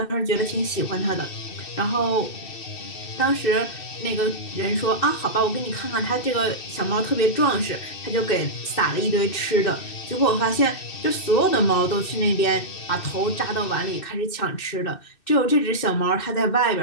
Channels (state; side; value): late; right; 2.6 ms